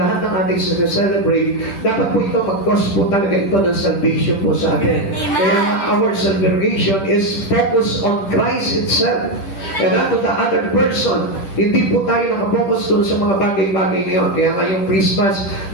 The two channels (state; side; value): late; right; 10 ms